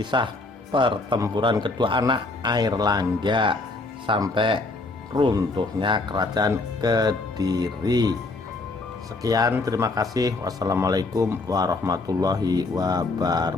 pertempuran kedua anak Airlangga sampai runtuhnya kerajaan Kediri. Sekian, terima kasih. Wassalamualaikum warahmatullahi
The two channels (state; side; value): quieter; right; 3.3 dB